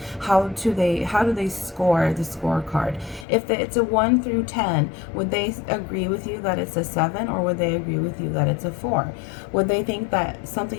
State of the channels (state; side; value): drops out; right; at 3.2 s